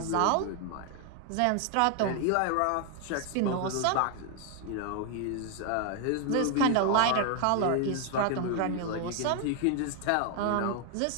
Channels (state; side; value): different; both; correlation 0.00